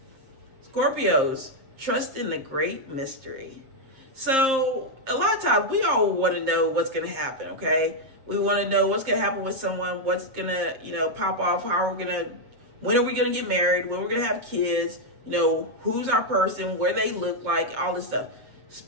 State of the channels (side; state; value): left; late; 7.6 ms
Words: Scorpios, trust in the great mystery. So a lot of times we all want to know what's going to happen, okay? We want to know what's going to happen with someone, what's going to, you know, pop off, when are we going to get married, when we're going to have kids, you know, who's our person, where they look like, all this stuff.